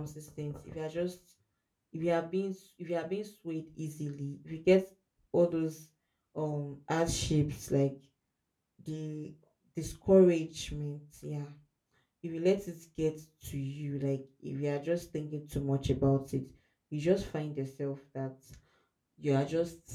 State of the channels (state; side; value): identical; both; correlation 1.00